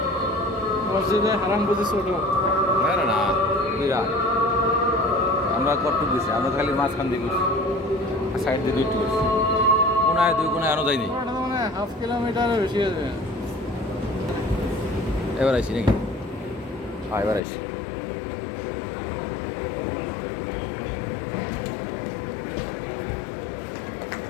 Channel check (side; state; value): right; drops out; at 17.4 s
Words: মসজিদে হারাম বুঝি ছোট। না না না, বিরাট। আমরা কটুক গেছি, আমরা খালি মাঝখান দিয়ে গেছি, সাইড দিয়ে দুইটি গেছি, কোনায় 2 কোনায় আনো যায়নি। মানে হাফ কিলোমিটারের বেশি আছে। এবার আইসি নাকি? হ্যাঁ এবার আইসি।